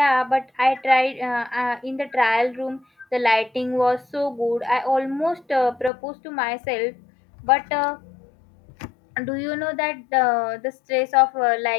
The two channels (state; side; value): drops out; right; at 5.9 s